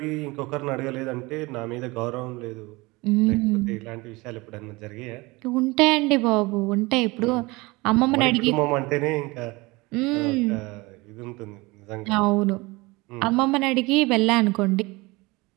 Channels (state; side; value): quieter; left; 23.4 dB